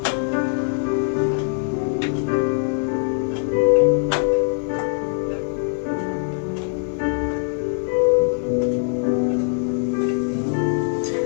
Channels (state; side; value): silent; right; 55 dB below the other